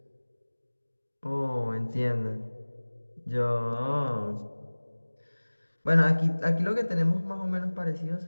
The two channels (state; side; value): inverted; both; correlation -1.00